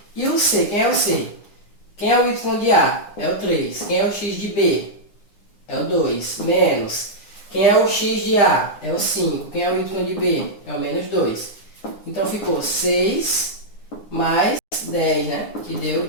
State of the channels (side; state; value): right; late; 9.8 ms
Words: e o C. Quem é o C? Quem é o Y de A? É o 3. Quem é o X de B? É o 2. Menos. Quem é o X de A? É o 5. Quem é o Y de B? É o menos 2. Então ficou 6 mais 10, né? Que deu